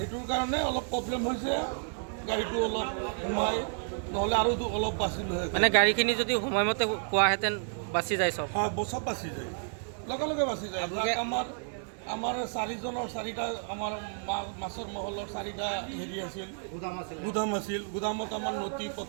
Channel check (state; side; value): silent; left; 57 dB below the other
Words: কাৰণে অলপ প্ৰব্লেম হৈছে। গাড়ীটো অলপ সোমাই নহ'লে আৰু অলপ বাচিলোঁ হয়। মানে গাড়ীখিনি যদি সময়মতে পোৱাহেঁতেন বাচি যায়, চব হয় চব বাচি যায়, লগে লগে বাচি যায়। আমাৰ চাৰিটা আমাৰ মাছৰ মহলৰ 4টা হেৰি আছিল, গুদাম আছিল। গুদামত আমাৰ নথি